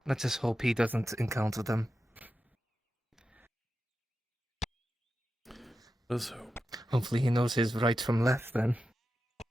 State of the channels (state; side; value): normal; both; correlation 0.91